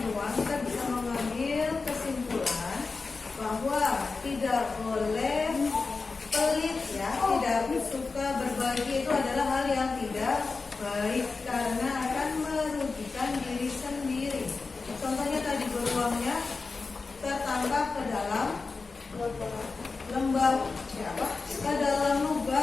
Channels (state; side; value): quieter; right; 4.2 dB